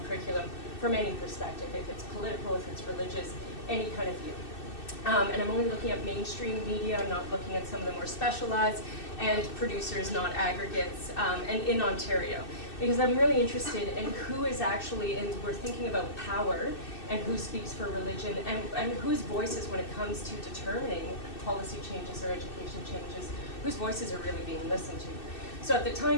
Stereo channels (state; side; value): late; right; 2.6 ms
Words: curriculum from any perspective, if it's political, if it's religious, any kind of view. And I'm only looking at mainstream media, I'm not looking at some of the more specialized, and producers, not aggregates, and in Ontario. Because I'm really interested in who is actually, and we're thinking about power, and who speaks for religion, and whose voices, when it comes to determining policy changes or education changes, whose voices are really being listened to. So at the